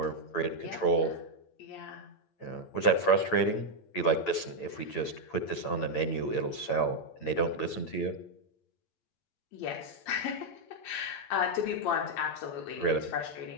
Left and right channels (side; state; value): right; late; 8.8 ms